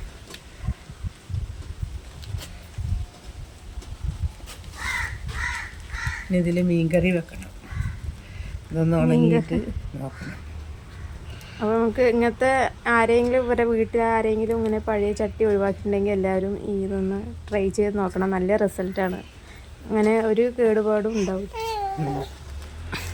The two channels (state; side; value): identical; both; correlation 1.00